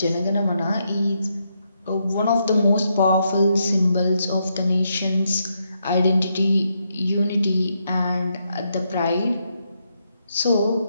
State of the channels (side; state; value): both; inverted; correlation -0.80